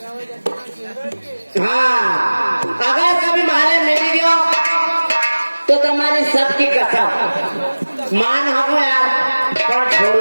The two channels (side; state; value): both; inverted; correlation -1.00